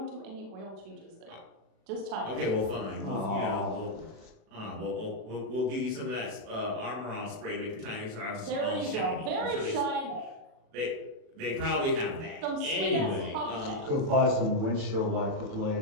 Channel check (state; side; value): late; left; 37 ms